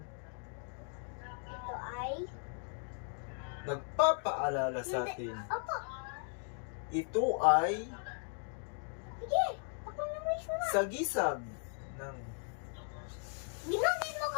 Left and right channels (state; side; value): silent; right; 53 dB below the other